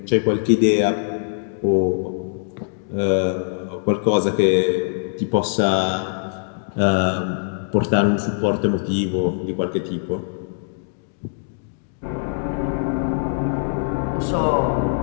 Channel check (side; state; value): right; silent; digital silence